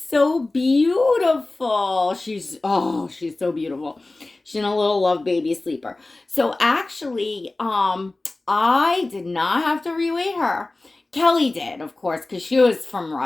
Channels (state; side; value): quieter; right; 3.0 dB